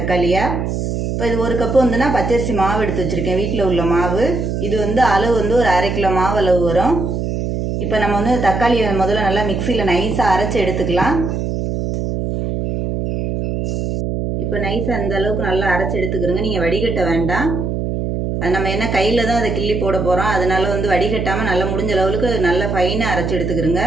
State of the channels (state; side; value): noise; right; hum, 2 dB below the sound